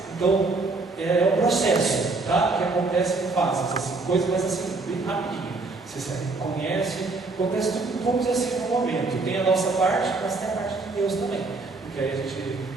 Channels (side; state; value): left; quieter; 3.6 dB